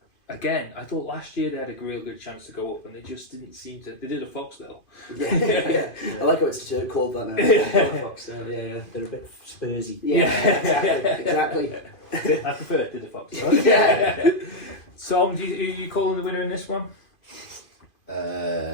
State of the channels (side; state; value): right; late; 2.5 ms